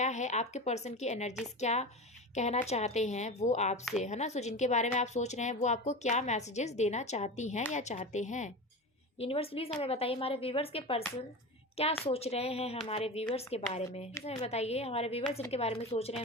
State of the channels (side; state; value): both; normal; correlation 0.27